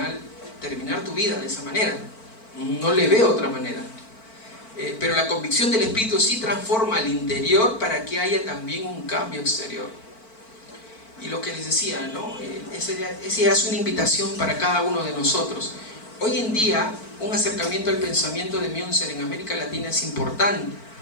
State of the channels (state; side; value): late; right; 4.5 ms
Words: terminar tu vida de esa manera. No le veo otra manera. Pero la convicción del Espíritu sí transforma al interior para que haya también un cambio exterior. Y lo que les decía, ¿no? Esa es una invitación para cada uno de nosotros. Hoy en día, un acercamiento al pensamiento de Münzer en América Latina es importante,